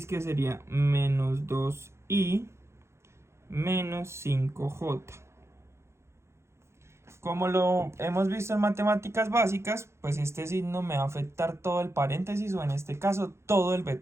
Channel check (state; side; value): late; left; 0.13 ms